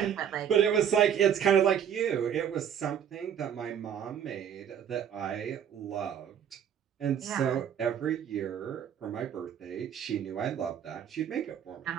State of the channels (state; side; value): quieter; left; 8.9 dB